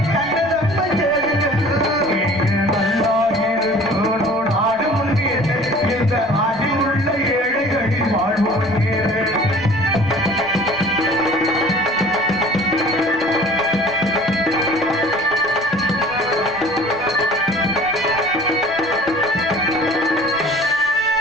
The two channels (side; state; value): both; normal; correlation 0.47